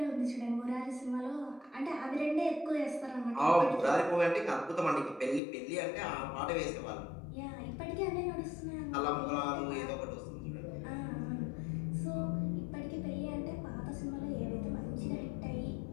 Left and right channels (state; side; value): drops out; right; at 5.4 s